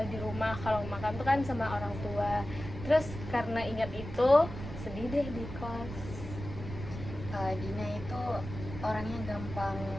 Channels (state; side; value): noise; right; rumble, 9 dB below the sound